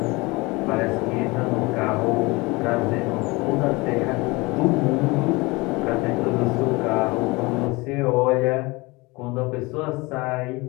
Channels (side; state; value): right; quieter; 24.1 dB